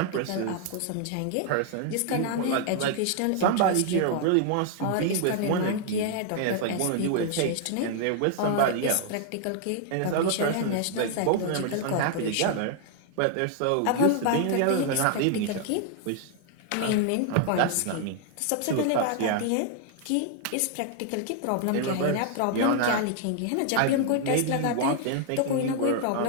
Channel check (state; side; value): different; both; correlation 0.00